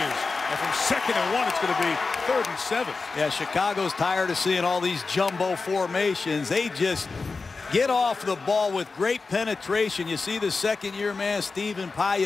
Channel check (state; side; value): quieter; right; 4.2 dB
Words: And from 2nd and 1, it's going to be 3rd and 7. Yeah, Chicago's tired of seeing all these jumbo formations. They just get off the ball with great penetration. You see the second-year man, Stephen